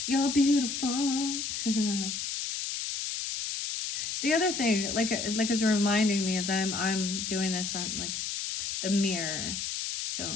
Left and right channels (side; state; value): left; noise; hiss, 3 dB below the sound